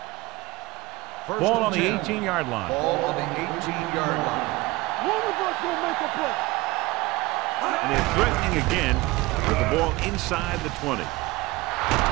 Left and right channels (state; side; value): quieter; left; 21.0 dB